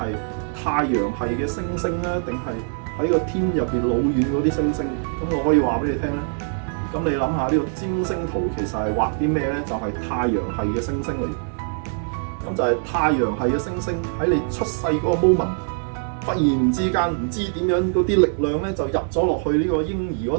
太陽系嘅星星咧，定係喺個天入邊老遠嗰啲星星？咁我可以話俾你聽咧。咁你諗下呢個占星圖其實係畫啲咩咧？就係太陽系嘅星星嚟。咁就係太陽系嘅星星喺你出世嗰個 moment， 忽然之間唔知點樣嗰啲力量咧就入咗落去呢個嬰兒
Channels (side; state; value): left; silent; 57 dB below the other